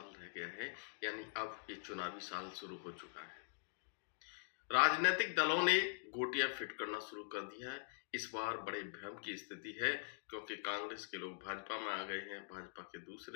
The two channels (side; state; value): right; silent; digital silence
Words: रह गया है, यानी अब ये चुनावी साल शुरू हो चुका है। राजनीतिक दलों ने गोटियां फिट करना शुरू कर दिया है। इस बार बड़े भ्रम की स्थिति है, क्योंकि कांग्रेस के लोग भाजपा में आ गए हैं, भाजपा के